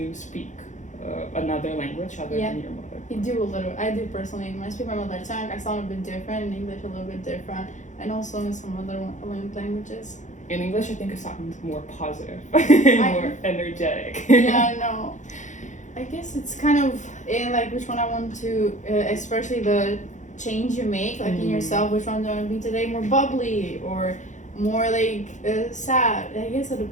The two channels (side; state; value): right; late; 0.35 ms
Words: speak another language other than your mother? You do a little. I do personally. When I speak my mother tongue, I sound a bit different. In English, a little bit different. And also in some other languages. In English, I think it sounds more positive, more energetic. Yeah, I know. I guess it's kind of in like which one I want to, especially the change you make, like in yourself, which one do I want to be today? More bubbly or more like sad? I guess it